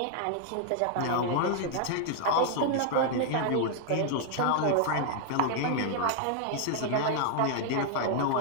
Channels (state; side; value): different; both; correlation 0.00